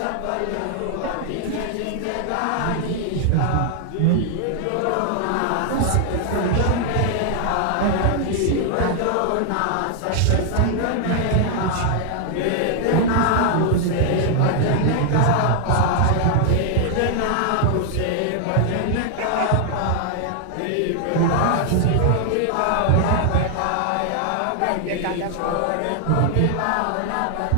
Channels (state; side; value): different; both; correlation 0.00